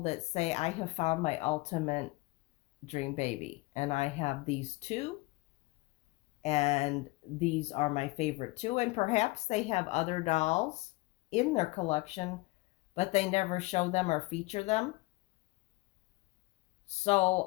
say, I have found my ultimate dream baby, and I have these 2, and these are my favorite 2, and perhaps they have other dolls in their collection, but they never show them or feature them.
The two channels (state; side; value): quieter; right; 22.9 dB